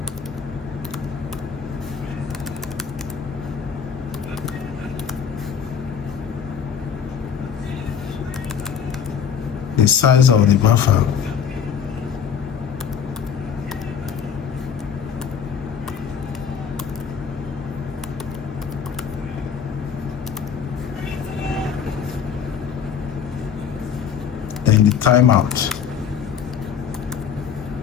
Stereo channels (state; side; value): quieter; right; 7.4 dB